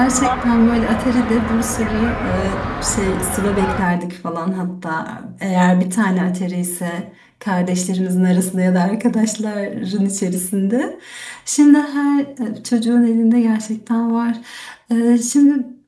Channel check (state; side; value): identical; both; correlation 1.00